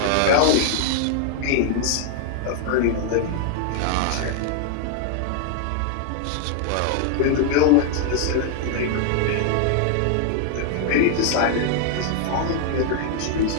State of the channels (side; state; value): both; different; correlation 0.00